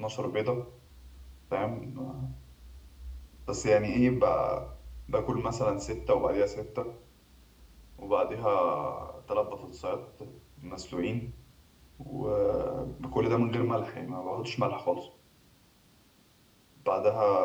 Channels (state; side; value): identical; both; correlation 1.00